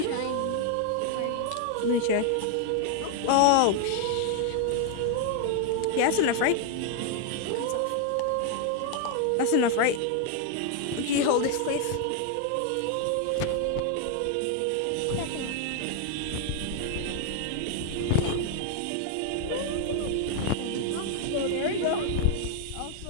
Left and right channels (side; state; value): both; different; correlation 0.00